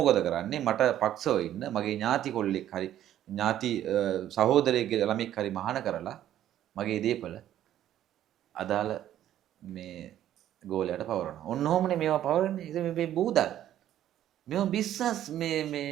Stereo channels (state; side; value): quieter; left; 11.8 dB